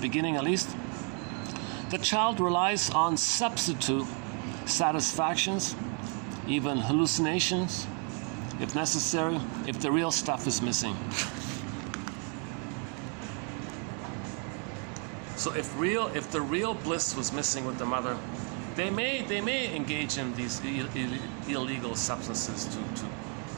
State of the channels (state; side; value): quieter; left; 38.9 dB